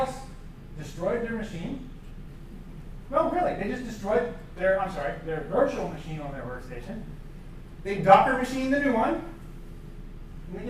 destroyed their machine. No, really, they just destroyed their virtual machine on their workstation. They Docker machined the new one, and they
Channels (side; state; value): both; identical; correlation 1.00